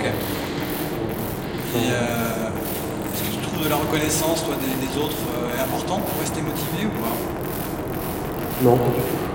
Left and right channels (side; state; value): both; identical; correlation 1.00